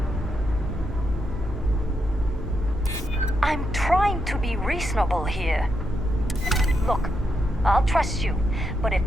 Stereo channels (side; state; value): both; normal; correlation 0.82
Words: I'm trying to be reasonable here. Look, I'll trust you, but if